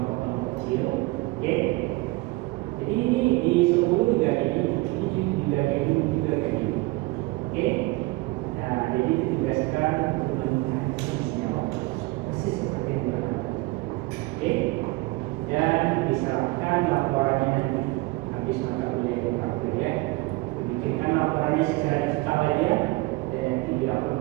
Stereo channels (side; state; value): left; quieter; 22.2 dB